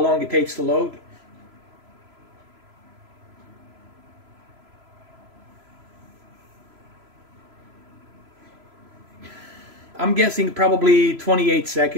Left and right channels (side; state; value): left; late; 3.0 ms